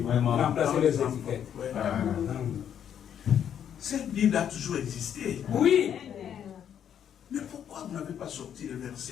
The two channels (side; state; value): right; quieter; 9.1 dB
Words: Remplacer les étiquettes. Ouais. Cette Bible a toujours existé. Oui. Mais pourquoi vous n'avez pas sorti les